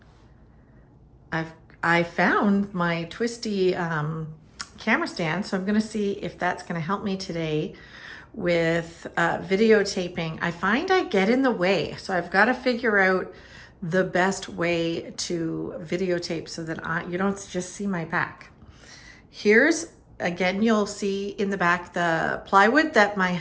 I found my twisty camera stand, so I'm gonna see if that's gonna help me today with videotaping. I find I get in the way, so I've got to figure out the best way to videotape so that you don't just see my back. Here's, again, you'll see in the back the plywood that my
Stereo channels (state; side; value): identical; both; correlation 1.00